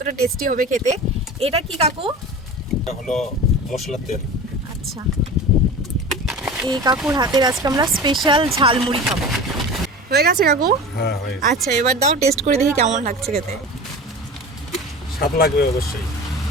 টেস্টি হবে খেতে। এটা কি কাকু? এটা হলো মশলার তেল। আচ্ছা, এই কাকুর হাতের আজকে আমরা স্পেশাল ঝালমুড়ি খাবো। হয়ে গেছে কাকু? হ্যাঁ হয়ে গেছে। আচ্ছা এবার দাও, টেস্ট করে দেখি কেমন লাগছে খেতে। স্বাদ লাগবে অবশ্যই।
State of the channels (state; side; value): normal; both; correlation 0.34